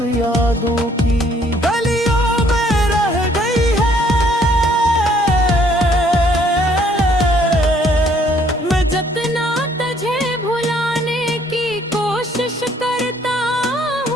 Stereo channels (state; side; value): normal; both; correlation 0.63